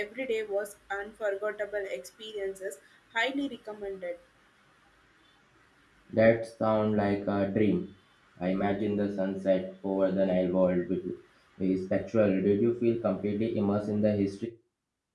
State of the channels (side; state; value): both; identical; correlation 1.00